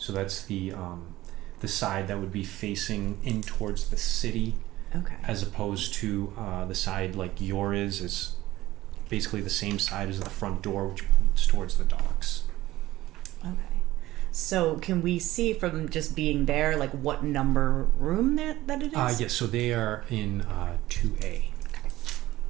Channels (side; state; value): left; quieter; 16.5 dB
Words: that's the side that would be facing in towards the city. Okay. As opposed to the side like yours is basically the same side as the front door, which points towards the docks. Okay. So can we see from just being there, like what number room that it is? Yes, so they are in 2A.